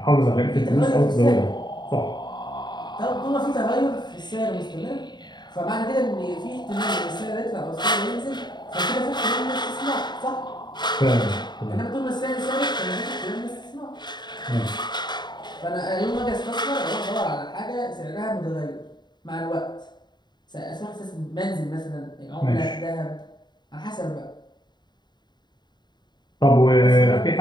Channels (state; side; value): late; right; 0.21 ms